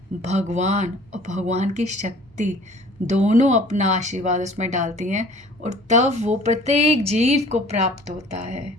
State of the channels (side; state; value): both; normal; correlation 0.49